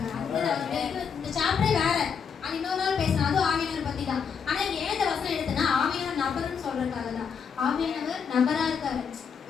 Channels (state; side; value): quieter; right; 6.6 dB